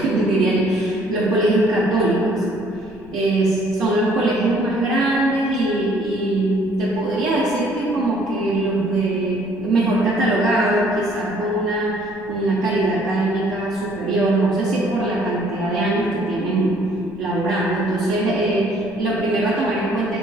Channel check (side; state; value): right; noise; rumble, 24 dB below the sound